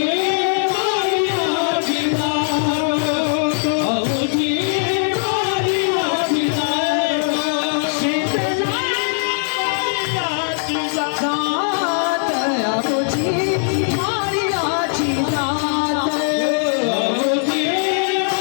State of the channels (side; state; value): right; silent; 65 dB below the other